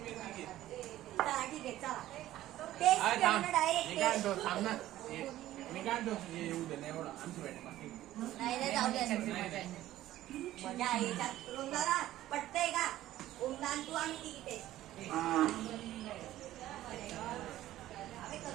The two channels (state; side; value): quieter; left; 14.3 dB